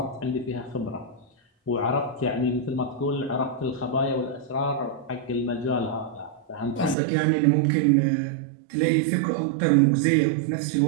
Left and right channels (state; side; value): drops out; left; at 7.0 s